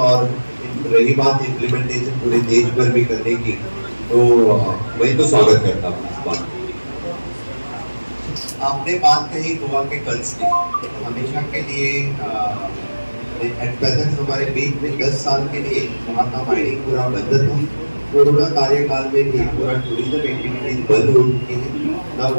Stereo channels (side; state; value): both; inverted; correlation -1.00